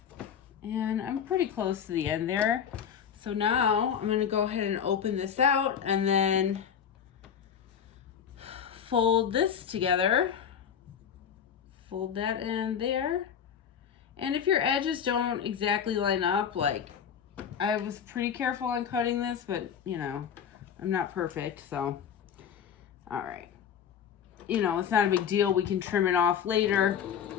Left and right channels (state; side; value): quieter; right; 8.0 dB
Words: and I'm pretty close to the end there. So now I'm going to go ahead and open this out and then fold this together. Fold that in there. And if your edges don't exactly line up, like I was pretty careful on cutting this, but you know, I'm not perfect, so all right. you know, it's not a big deal. We can trim it off later